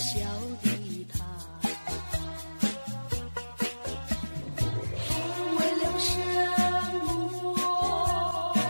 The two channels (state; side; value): inverted; both; correlation -1.00